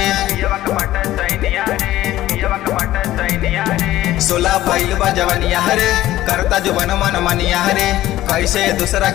सोला भइल बा जवनिया रे करता जवन मन मनिया रे कैसे दूसरा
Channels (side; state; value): right; quieter; 14.8 dB